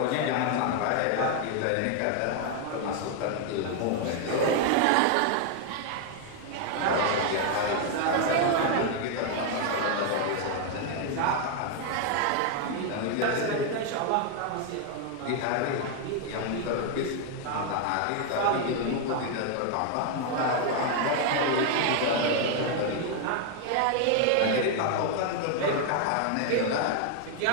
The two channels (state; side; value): different; both; correlation 0.00